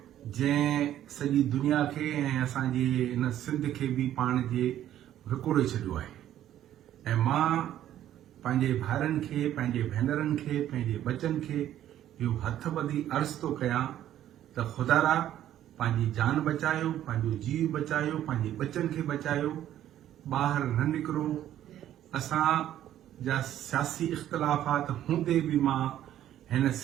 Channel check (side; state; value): left; quieter; 11.9 dB